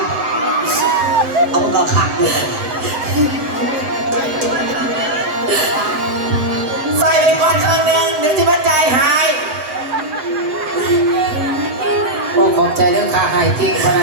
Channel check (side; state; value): left; late; 7.9 ms